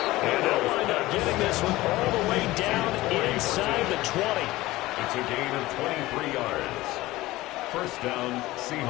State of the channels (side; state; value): right; quieter; 18.2 dB